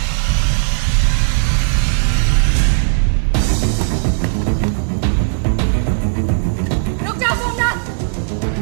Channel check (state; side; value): silent; left; digital silence